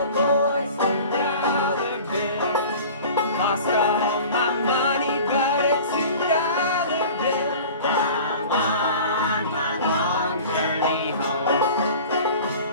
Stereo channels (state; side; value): inverted; both; correlation -0.41